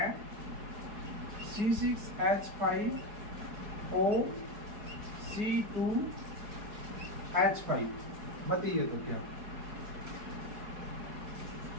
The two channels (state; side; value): late; left; 4.7 ms